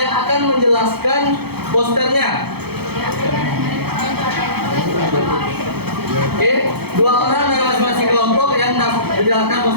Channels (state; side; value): late; left; 0.96 ms